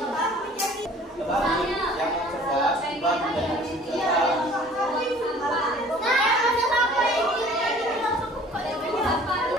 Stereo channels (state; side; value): normal; both; correlation 0.50